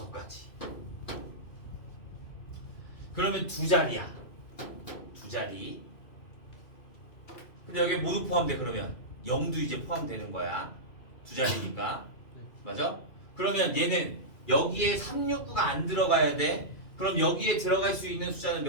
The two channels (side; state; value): right; late; 2.5 ms